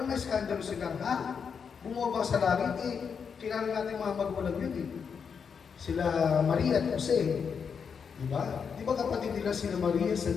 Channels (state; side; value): quieter; right; 6.4 dB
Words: na-skandalo sila, ha? Bumaba sa langit eh. Kilala natin mga magulang yun eh. Sila Maria at Jose. Di ba? Di ba kapatid nila sila Maria,